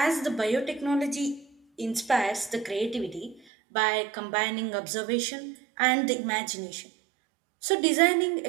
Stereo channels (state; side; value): drops out; left; at 3.4 s